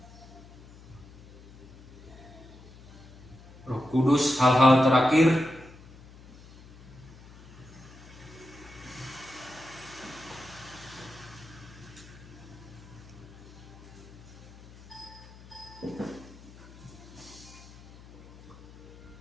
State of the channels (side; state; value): left; noise; hum, 20 dB below the sound